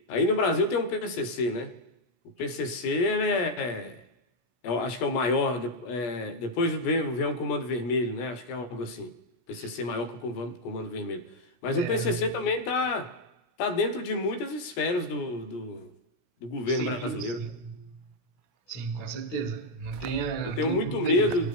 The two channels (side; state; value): right; late; 16 ms